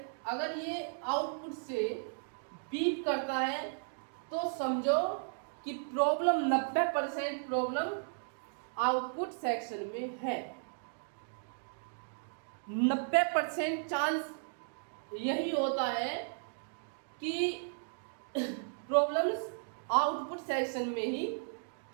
अगर ये आउटपुट से बीप करता है तो समझो कि प्रॉब्लम 90% प्रॉब्लम आउटपुट सेक्शन में है। 90% चांस यही होता है कि प्रॉब्लम्स आउटपुट सेक्शन में ही,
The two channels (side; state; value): left; silent; digital silence